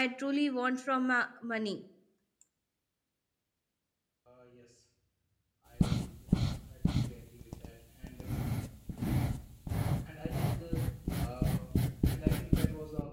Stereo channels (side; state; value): both; identical; correlation 1.00